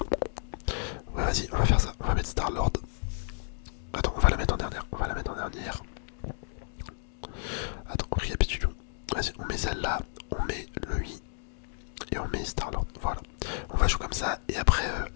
Ouais, vas-y, on va faire ça. On va mettre Star-Lord. Attends, on va la mettre en dernière. Attends, récapitulons. Vas-y, on met celle-là. On met lui. Et on met Star-Lord. Voilà. On va jouer comme ça. Et après,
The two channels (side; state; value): right; silent; digital silence